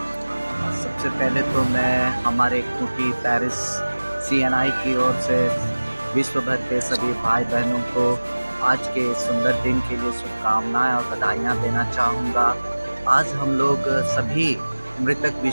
सबसे पहले तो मैं हमारे खूंटी पेरिस CNI की ओर से विश्व भर के सभी भाई बहनों को आज के सुंदर दिन के लिए शुभकामनाएं और बधाइयाँ देना चाहूँगा। आज हम लोग सभी मृतक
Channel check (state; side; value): inverted; both; correlation -1.00